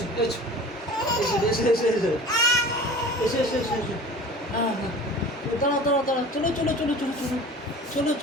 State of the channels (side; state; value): both; normal; correlation 0.40